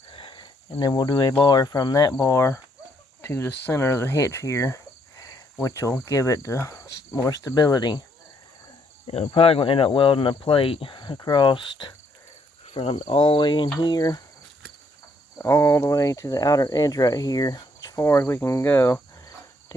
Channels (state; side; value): normal; both; correlation 0.71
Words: and then we'll do a bar from that bar to the center of the hitch here, which will give it more stability. We're probably going to end up welding a plate across from all the way in here all the way to the outer edge right here, as far as we can go,